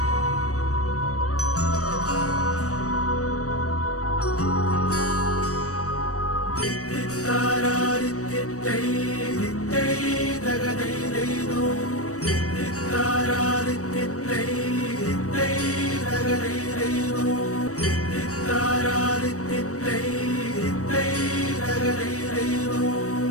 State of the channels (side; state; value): right; late; 0.66 ms